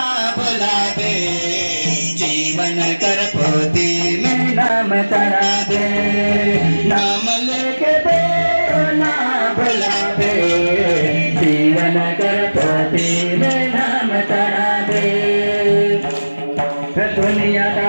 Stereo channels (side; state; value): both; inverted; correlation -1.00